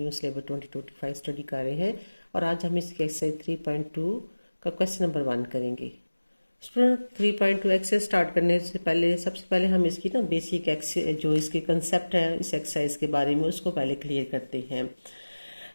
syllabus 2025 study कर रहे हैं और आज हम इसके एक्सरसाइज 3.2 का क्वेश्चन नंबर 1 करेंगे। स्टूडेंट 3.2 एक्सरसाइज स्टार्ट करने से पहले सबसे पहले हम इसकी बेसिक जो इसके कंसेप्ट है इस एक्सरसाइज के बारे में उसको पहले क्लियर करते हैं।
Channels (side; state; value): both; inverted; correlation -1.00